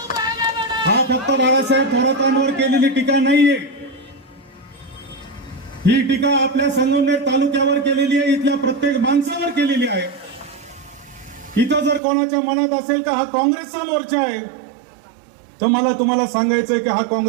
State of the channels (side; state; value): left; drops out; at 12.0 s